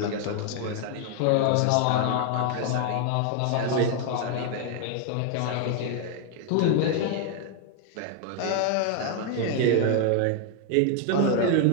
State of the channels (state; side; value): different; both; correlation 0.00